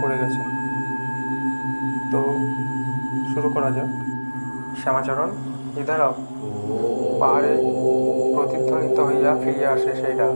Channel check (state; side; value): inverted; both; correlation -1.00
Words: করে গেছেন। তো শুরু করা যাক। শ্যামাচরণ ইধারাও পাহাড়ে প্রতিধ্বনিত হইয়া ফিরিয়া আসে সেই ডাক।